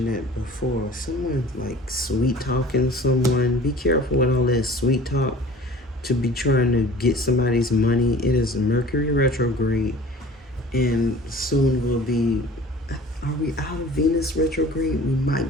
that before, someone like sweet talking someone. Be careful with all that sweet talk to be trying to get somebody's money. It is Mercury retrograde, and soon will be, are we out of Venus retrograde? We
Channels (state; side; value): normal; both; correlation 0.46